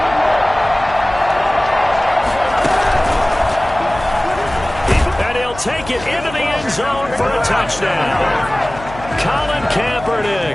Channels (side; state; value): left; noise; hum, 15 dB below the sound